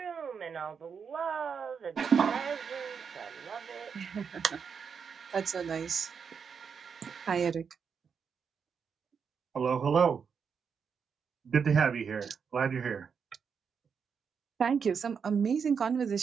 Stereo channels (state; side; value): quieter; left; 6.4 dB